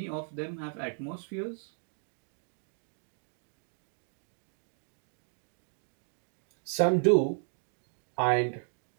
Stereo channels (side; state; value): left; silent; 55 dB below the other